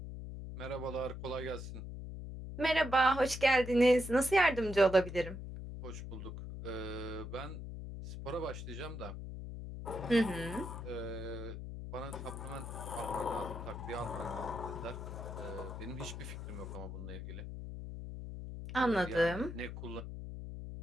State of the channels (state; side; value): noise; left; hum, 8 dB below the sound